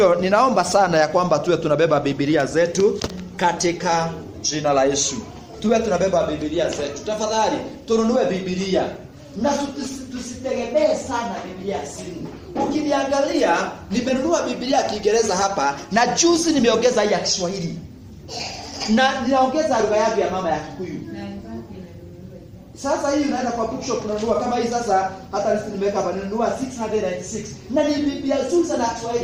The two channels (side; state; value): both; identical; correlation 1.00